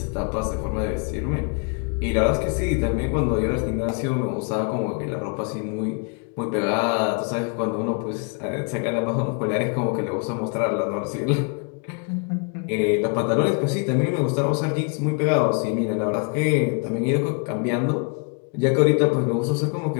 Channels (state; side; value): quieter; right; 38.0 dB